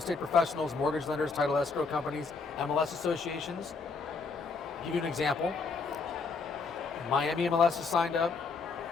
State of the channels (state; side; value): quieter; right; 4.6 dB